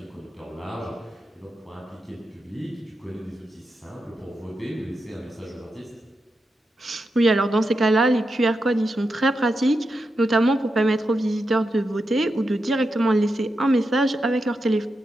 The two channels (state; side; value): normal; both; correlation 0.87